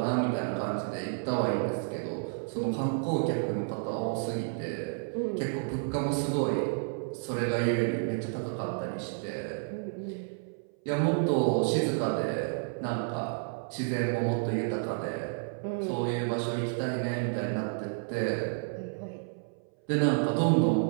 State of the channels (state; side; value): silent; left; 57 dB below the other